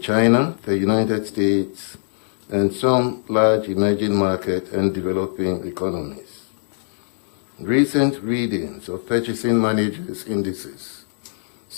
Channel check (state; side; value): silent; right; digital silence